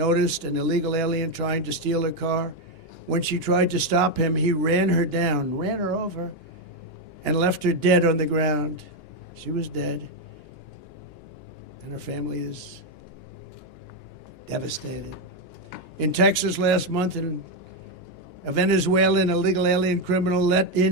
an illegal alien trying to steal her car. When she tried to stop him, he ran her down, ran her over, and left her dead on the ground. She was dead, and her family is devastated. In Texas last month, a Venezuelan illegal alien criminal let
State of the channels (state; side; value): late; right; 2.9 ms